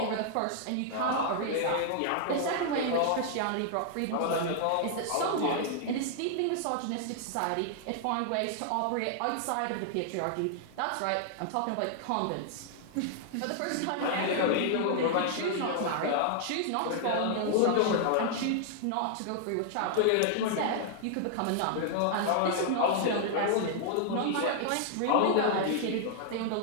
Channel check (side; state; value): both; different; correlation -0.01